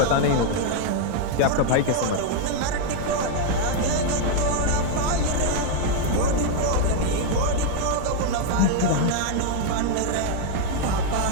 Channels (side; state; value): both; different; correlation 0.00